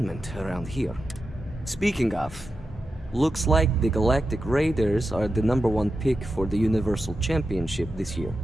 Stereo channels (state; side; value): normal; both; correlation 0.90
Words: around here. Speaking of, looks like the Galactic Raiders are the #1 pick for the Universal Championship this year.